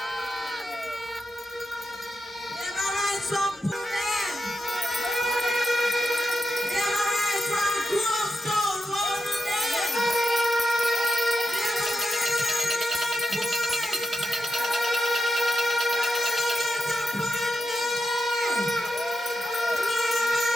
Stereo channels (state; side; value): normal; both; correlation 0.87